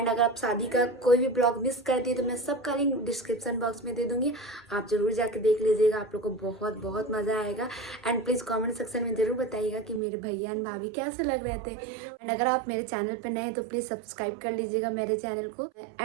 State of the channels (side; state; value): left; drops out; at 10.0 s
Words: अगर आप शादी का कोई भी ब्लॉग मिस कर दिए तो मैं सबका लिंक डिस्क्रिप्शन बॉक्स में दे दूँगी, आप ज़रूर जाके देख लीजिएगा, आप लोग को बहुत बहुत मज़ा आएगा। एंड प्लीज़ कॉमेंट सेक्शन में ज़रूर बताइएगा कि मेरे भैया एंड भाभी कैसे लग रहे थे। एंड अगर आप मेरे चैनल पर नए हैं तो प्लीज़ सब्सक्राइब कर लीजिएगा मेरे चैनल को।